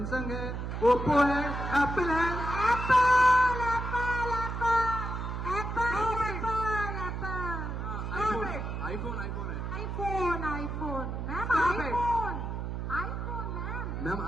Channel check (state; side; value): noise; right; hum, 4 dB below the sound